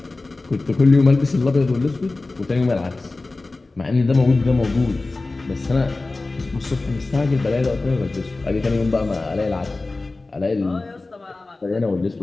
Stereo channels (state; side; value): quieter; right; 3.3 dB